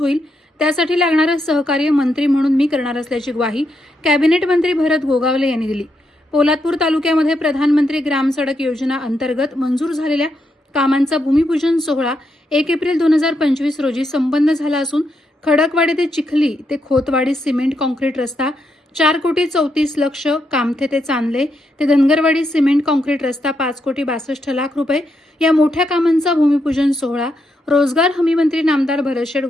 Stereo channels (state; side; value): normal; both; correlation 0.81